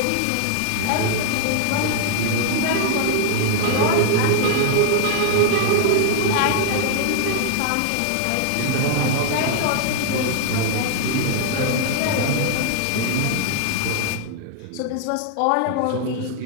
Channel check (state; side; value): different; both; correlation 0.00